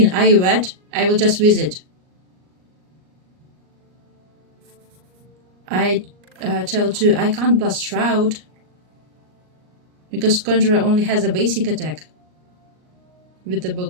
are you wet? I will just visit. I tell 2 I can't blast Shroud because Conjurer only has a basic attack with the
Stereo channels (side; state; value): left; late; 38 ms